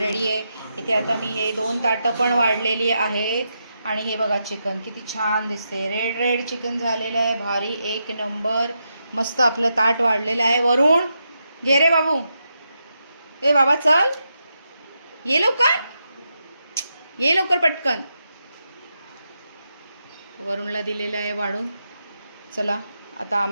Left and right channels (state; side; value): inverted; both; correlation -0.85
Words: आहे. इथे आता मी हे 2 ताटं पण वाढलेली आहेत. आणि हे बघा चिकन किती छान दिसते, रेड चिकन झालेलं आहे. भारी, एक नंबर. मस्त आपलं ताट वाढलेलं आहे. वरून घे रे बाबू. ए बाबा चल, ये लवकर पटकन. वरूनला दिलेलं आहे वाढून. चला आता